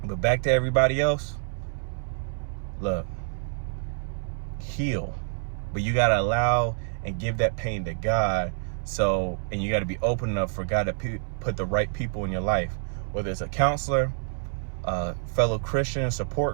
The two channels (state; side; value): silent; left; 60 dB below the other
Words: But back to everybody else, look, heal. But you gotta allow and give that pain to God. And you got to be open enough for God to put the right people in your life, whether it's a counselor, a fellow Christian